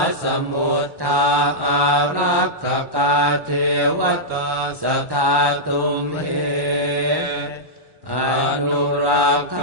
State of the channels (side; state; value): left; late; 1.1 ms